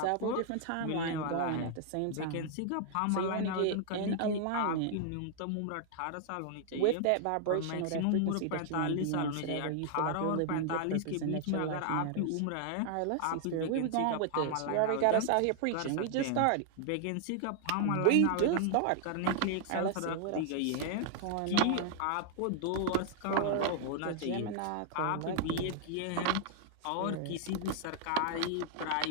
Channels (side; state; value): both; different; correlation 0.00